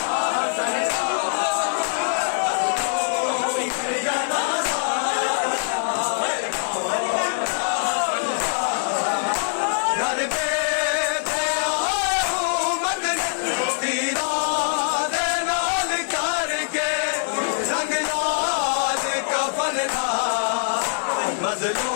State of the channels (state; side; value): silent; right; digital silence